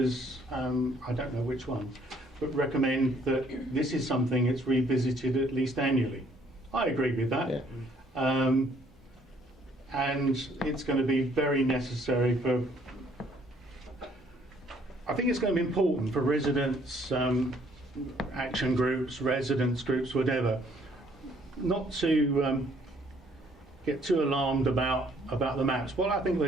I don't know which one, but recommend that this is something that's revisited at least annually. I agree with that. Yeah. And it's going to be very necessary for, I think it's going to be important for residents, action groups, residents groups, whatever, not to get too alarmed about the maps. What I think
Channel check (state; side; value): normal; both; correlation 0.63